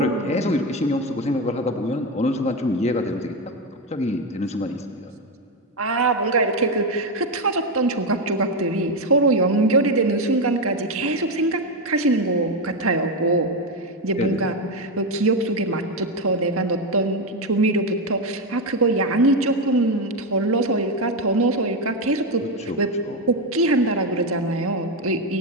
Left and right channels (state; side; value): normal; both; correlation 0.10